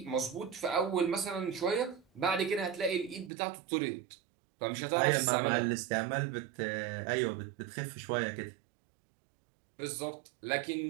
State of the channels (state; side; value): drops out; left; at 3.3 s